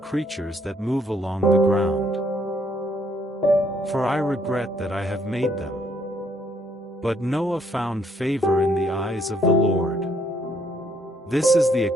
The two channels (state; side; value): normal; both; correlation 0.69